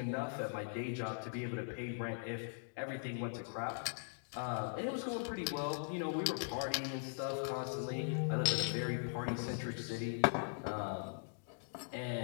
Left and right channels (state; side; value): silent; right; digital silence